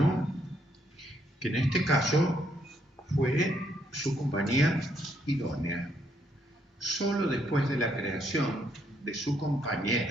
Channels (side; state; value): both; normal; correlation 0.73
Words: que en este caso fue su compañía idónea. Solo después de la creación de su